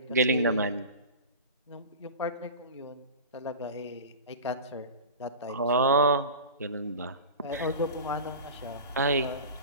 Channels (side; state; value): both; inverted; correlation -0.32